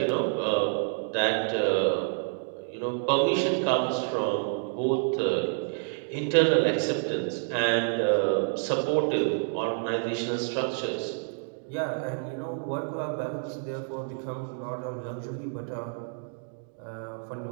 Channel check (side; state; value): left; silent; 59 dB below the other